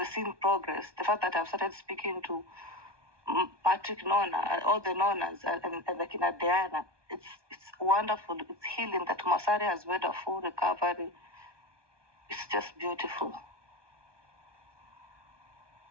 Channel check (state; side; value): late; left; 1.2 ms